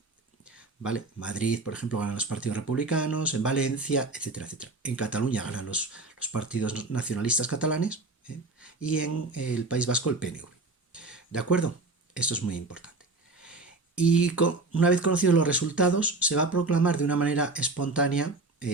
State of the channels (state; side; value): quieter; left; 3.3 dB